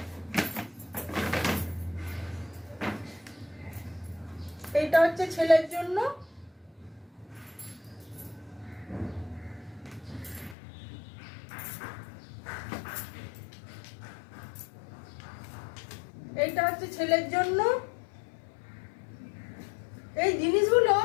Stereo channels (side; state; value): right; drops out; at 10.6 s